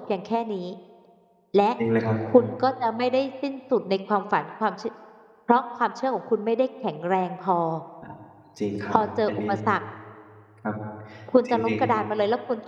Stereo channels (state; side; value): identical; both; correlation 1.00